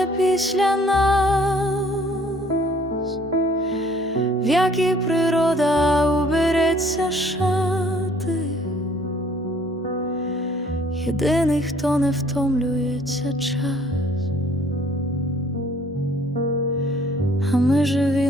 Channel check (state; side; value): normal; both; correlation 0.59